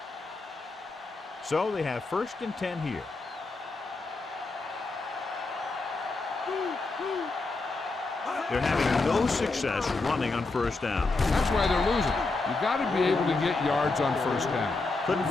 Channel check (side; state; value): right; quieter; 3.5 dB